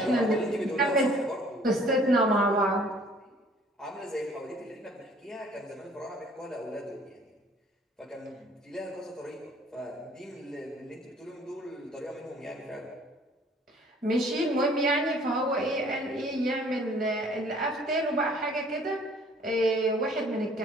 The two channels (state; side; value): normal; both; correlation 0.56